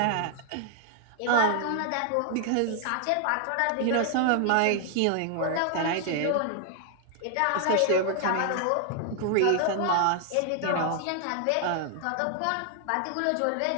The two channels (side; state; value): both; different; correlation 0.00